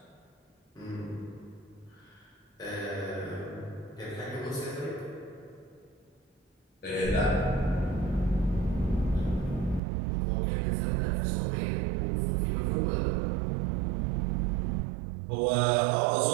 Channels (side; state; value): left; drops out; at 9.8 s